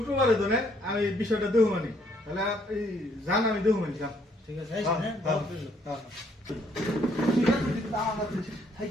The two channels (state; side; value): normal; both; correlation 0.67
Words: ধরে আমি বিষয়টা দেবো মানে তাহলে আপনি জান আমি দেবো মানে যান। ঠিক আছে, আইসেন, হ্যাঁ? দাওয়াত রইলো।